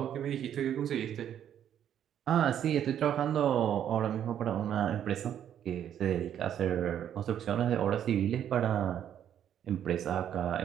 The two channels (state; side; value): quieter; left; 9.9 dB